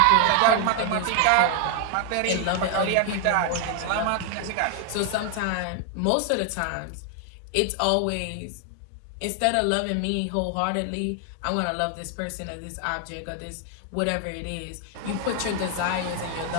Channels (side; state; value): both; different; correlation 0.00